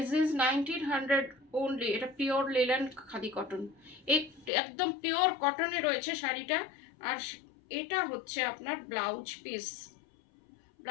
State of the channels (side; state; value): right; drops out; at 4.5 s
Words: is 1900 only. এটা পিওর লিলেন খাদি কটন, একদম পিওর কটনে রয়েছে শাড়িটা। আর এটা হচ্ছে আপনার ব্লাউজ পিস,